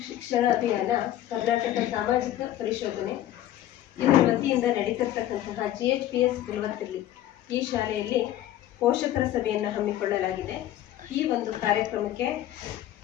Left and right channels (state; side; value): quieter; right; 13.0 dB